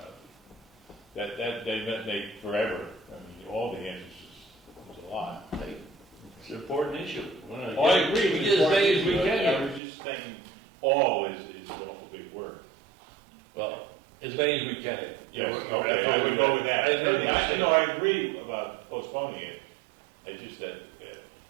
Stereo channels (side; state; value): left; drops out; at 9.8 s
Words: they forever, I mean, all the answers is a lot. It's an important issue. Oh, I agree. We get as many as we can. I was just thinking all is an awful big word. Well, as many as we can. Yes, okay, I would go with that. I agree about postponing it. I just said,